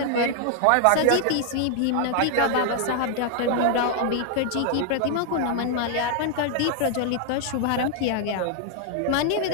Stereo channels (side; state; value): both; different; correlation 0.00